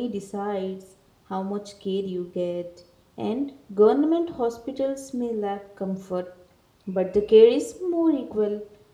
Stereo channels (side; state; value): both; identical; correlation 1.00